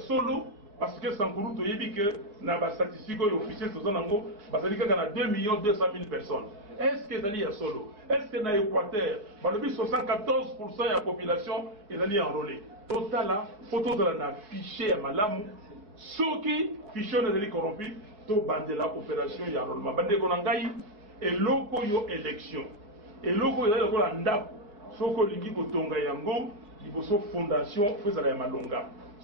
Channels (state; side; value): late; left; 4.8 ms